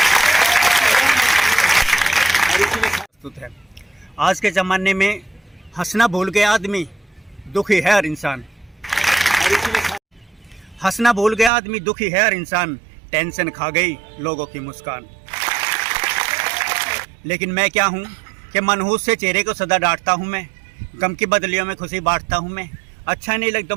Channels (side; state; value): left; drops out; at 11.5 s